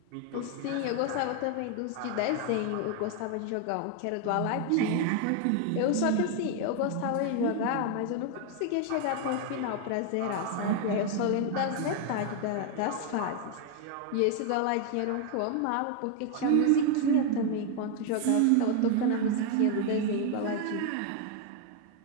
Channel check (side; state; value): both; different; correlation 0.01